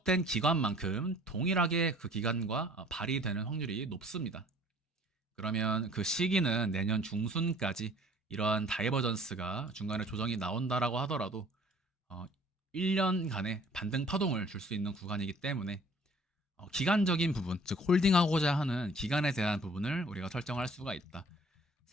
기간만큼 동일하게 그 기간과 발휘되는 확률이 높습니다. 그러면 그 시기는 내년 중순까지 이러한 다이버전스가 중간에 조정이 나온다라고 하더라도 1년간의 반등 파동을 줄 수 있는 구간이기 때문에 기간적인 부분, 즉 홀딩하고자 하는 기간에 대한 부분을 우리가 설정할 수가 있다.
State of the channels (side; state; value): both; normal; correlation 0.53